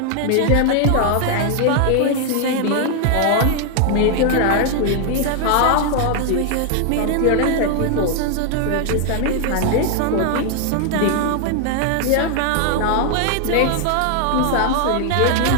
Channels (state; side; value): different; both; correlation 0.00